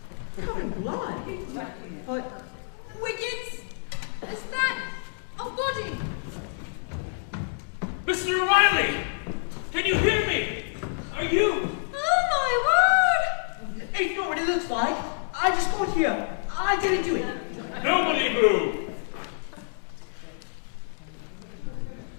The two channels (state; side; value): silent; right; digital silence